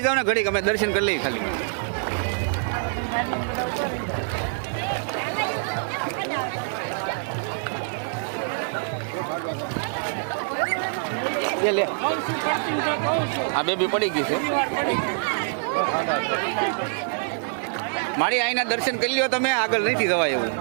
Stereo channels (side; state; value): left; silent; digital silence